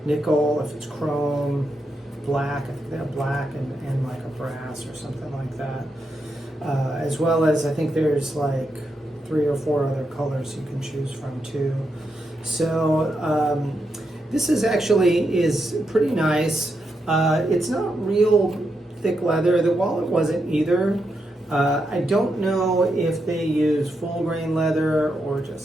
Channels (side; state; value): both; normal; correlation 0.83